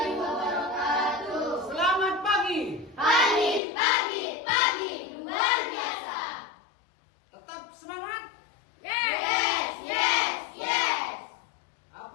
wabarakatuh. Selamat pagi. Pagi, luar biasa. Tetap semangat. Yes.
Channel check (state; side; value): drops out; right; at 3.6 s